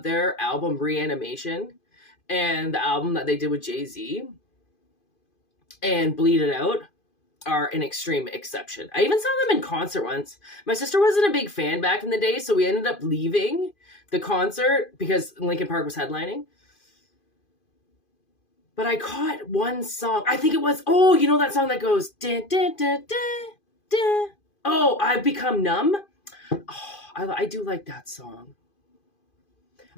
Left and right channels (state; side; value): late; right; 2.5 ms